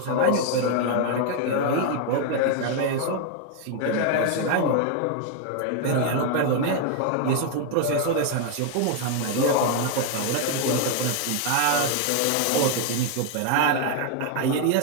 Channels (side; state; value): both; different; correlation 0.00